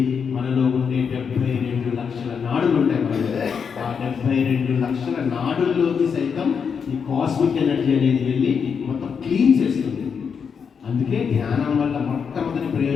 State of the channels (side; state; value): right; quieter; 6.5 dB